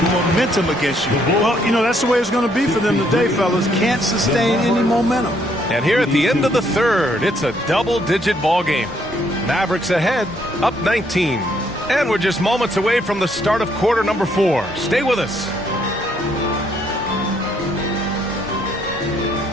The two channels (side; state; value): both; normal; correlation 0.70